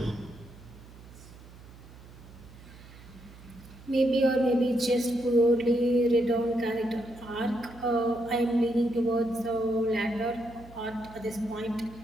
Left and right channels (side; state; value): right; noise; hum, 19 dB below the sound